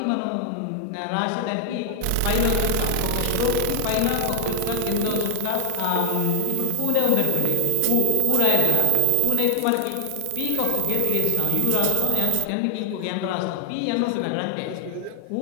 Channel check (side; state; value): both; different; correlation 0.00